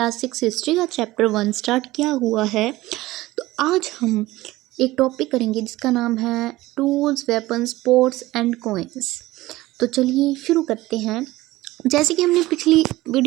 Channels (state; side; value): quieter; left; 18.0 dB